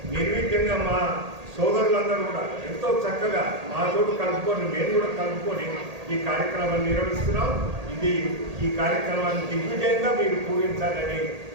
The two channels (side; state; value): left; late; 1.8 ms